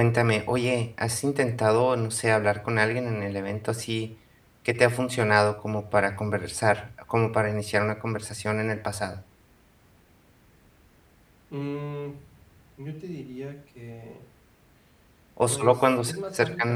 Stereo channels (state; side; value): identical; both; correlation 1.00